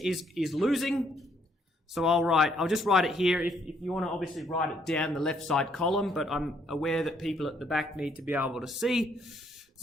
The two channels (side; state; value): both; normal; correlation 0.70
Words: losing. So I'll just write it here. If you want to obviously write it down the left side column, but I'm aware that people at the back need to be able to see.